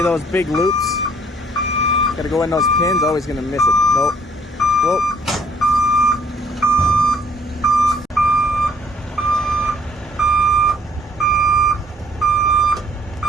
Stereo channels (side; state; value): both; normal; correlation 0.62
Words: those big loops? Gotta go in those pins, always gonna miss it. Nope. Whoa.